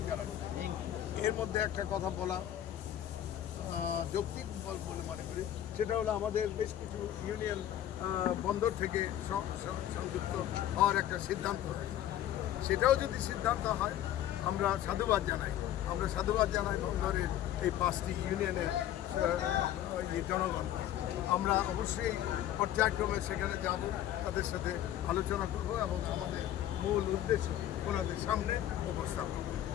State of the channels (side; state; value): right; quieter; 11.9 dB